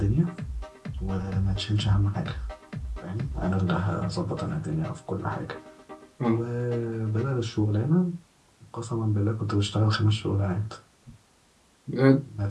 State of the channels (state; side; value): identical; both; correlation 1.00